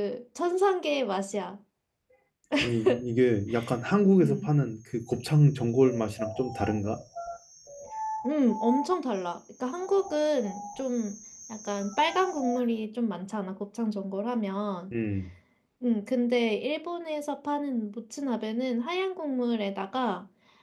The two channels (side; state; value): both; identical; correlation 1.00